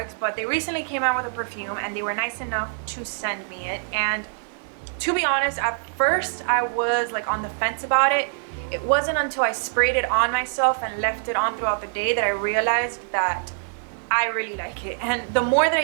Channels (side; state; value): left; silent; 62 dB below the other